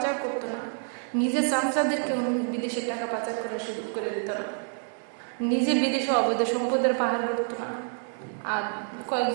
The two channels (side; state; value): left; silent; 58 dB below the other